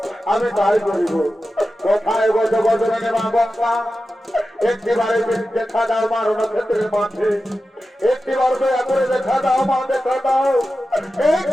আমি তাই করিব। কোথায় গজ গজনে মা গঙ্গা, একটিবারে দেখা দাও মা রণক্ষেত্রের মাঠে, একটিবার দয়া করে দেখা দাও মা, দেখা দাও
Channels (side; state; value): both; normal; correlation 0.93